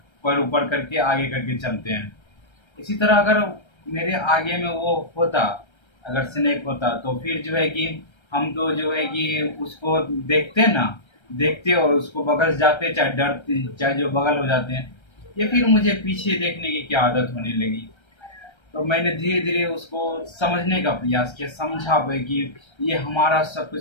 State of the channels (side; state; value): right; late; 1.3 ms